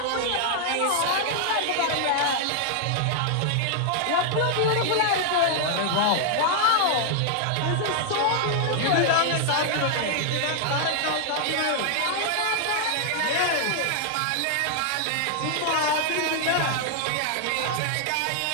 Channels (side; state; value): both; different; correlation 0.00